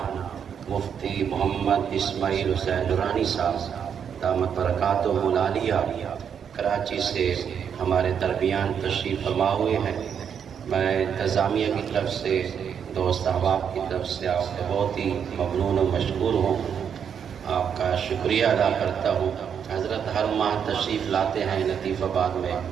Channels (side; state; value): left; quieter; 7.7 dB